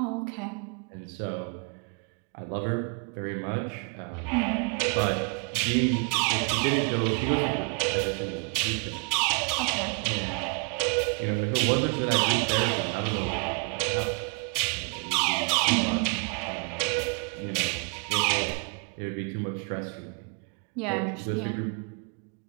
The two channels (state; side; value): quieter; left; 36.8 dB